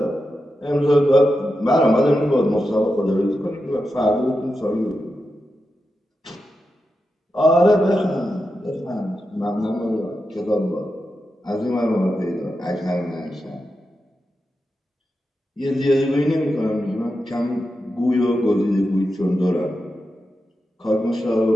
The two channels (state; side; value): normal; both; correlation 0.89